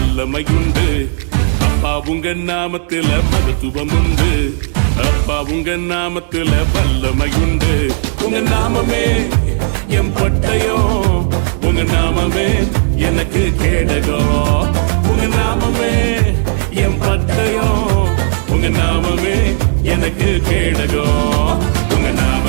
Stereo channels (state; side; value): silent; left; digital silence